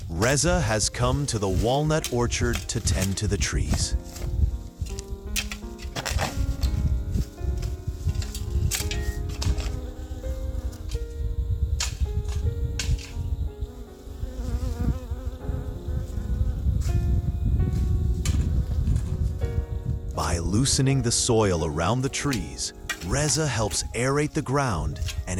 Reza has come to the walnut orchard to tend to the trees. By loosening the soil around the trees, Reza helps aerate the ground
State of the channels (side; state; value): both; identical; correlation 1.00